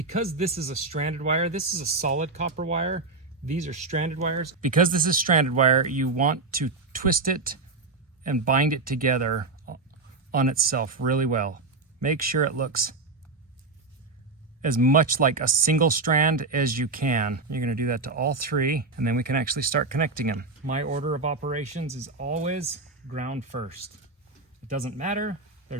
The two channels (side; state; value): left; quieter; 3.7 dB